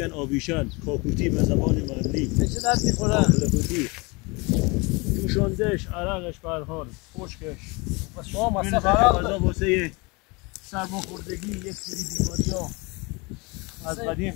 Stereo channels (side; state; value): right; quieter; 27.1 dB